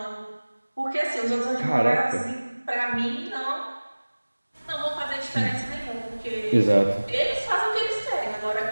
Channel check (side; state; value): both; inverted; correlation -1.00